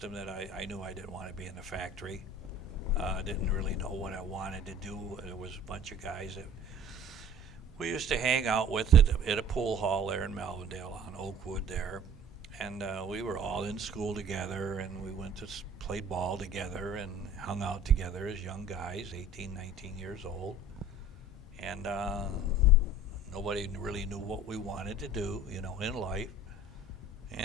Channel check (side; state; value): both; normal; correlation 0.47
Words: that I knew I didn't want to be in the factory. I didn't really know what I wanted to do. There was a bunch of guys that we used to hang out with at a pool hall there in Melvindale on Oakwood there. And we were all in school together, and we went to play ball together and hung out together as young guys, 18, 19 years old. And nobody really knew what we wanted to do, in life.